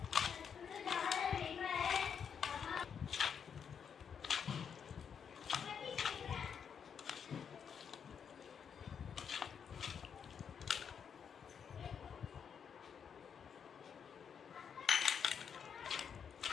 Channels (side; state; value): right; quieter; 7.2 dB